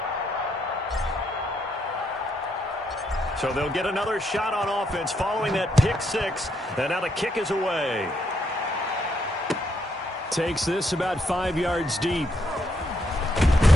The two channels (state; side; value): normal; both; correlation 0.77